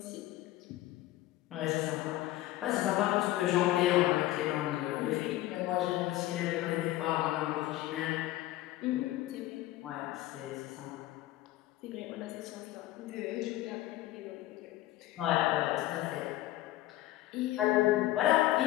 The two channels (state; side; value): quieter; right; 15.8 dB